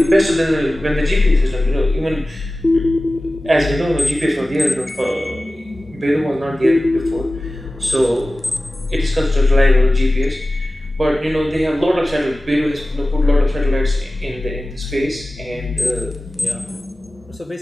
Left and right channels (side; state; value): both; normal; correlation 0.96